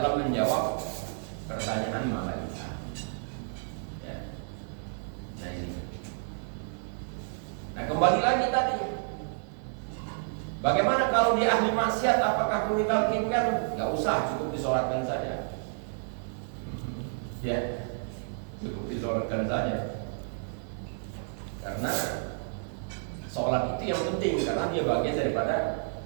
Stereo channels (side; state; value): left; silent; digital silence